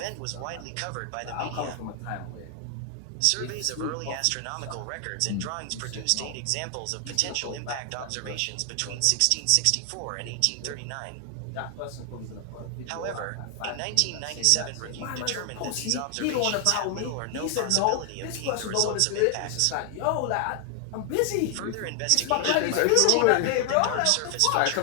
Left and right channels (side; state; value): both; different; correlation 0.00